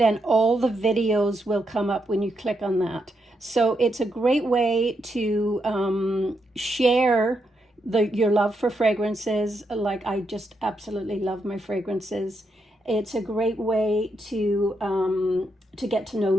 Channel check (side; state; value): both; normal; correlation 0.81